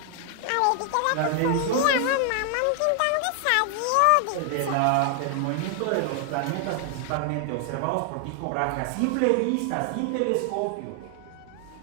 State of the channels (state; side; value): different; both; correlation 0.00